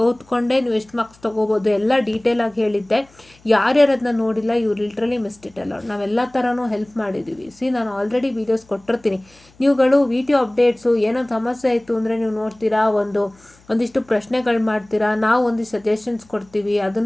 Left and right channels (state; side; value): noise; left; hum, 29 dB below the sound